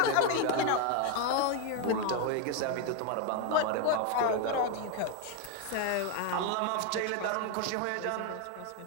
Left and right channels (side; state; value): both; different; correlation 0.01